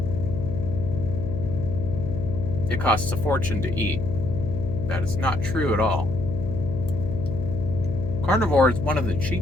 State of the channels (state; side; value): noise; left; hum, 4 dB below the sound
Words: it costs a fortune to eat. That is not true at all. Carnivore is one of the